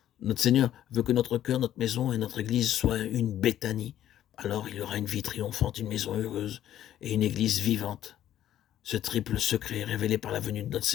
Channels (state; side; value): quieter; right; 11.8 dB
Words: Notre Seigneur veut que notre cœur, notre maison et notre église soient une Béthanie. Alors il y aura une vie triomphante, une maison heureuse et une église vivante. Ce triple secret est révélé par la venue de notre